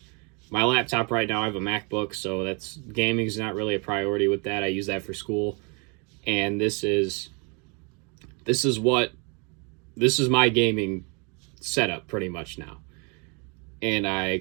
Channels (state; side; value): quieter; left; 33.2 dB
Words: my laptop right now, I have a MacBook, so gaming is not really a priority with that. I use that for school. And this is my gaming setup pretty much now, and I